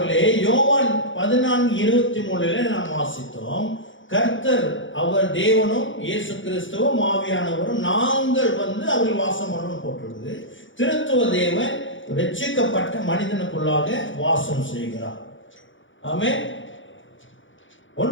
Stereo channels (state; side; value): late; right; 0.56 ms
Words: யோவான் 14:23 நாம் வாசித்தோம். கர்த்தர் அவர் தேவனும் இயேசு கிறிஸ்துவும் ஆவியானவரும் நாங்கள் அவர்கள் வாசம் பண்ணணும் போட்டிருக்குது. திருத்துவ தேவன் ரட்சிக்கப்பட்ட மனிதனுக்குள்ளாக வாசம் செய்கிறார். ஆமென்.